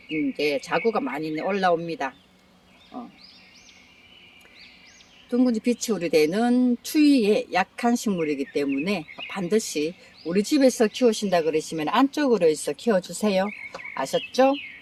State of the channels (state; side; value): identical; both; correlation 1.00